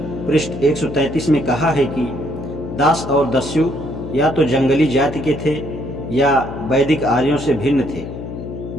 पृष्ठ 133 में कहा है कि दास और दस्यु या तो जंगली जाति के थे या वैदिक आर्यों से भिन्न थे।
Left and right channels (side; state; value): left; noise; hum, 9 dB below the sound